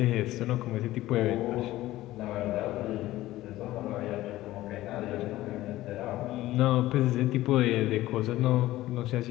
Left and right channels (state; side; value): quieter; right; 16.1 dB